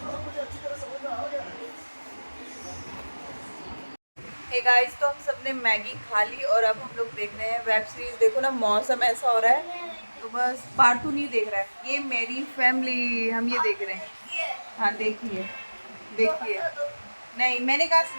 हे गाइस, तो हम सबने मैगी खा ली और अब हम लोग देख रहे हैं वेब सीरीज। देखो ना, मौसम ऐसा हो रहा है तो बस पार्टू नहीं देख रहा है। ये मेरी फैमिली, हम ये देख रहे हैं। हाँ देखिए देखिए। नहीं मैंने कहा से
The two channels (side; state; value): both; inverted; correlation -1.00